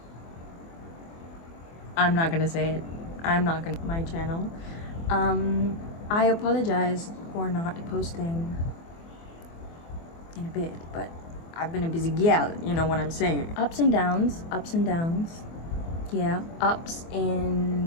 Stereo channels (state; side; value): late; right; 24 ms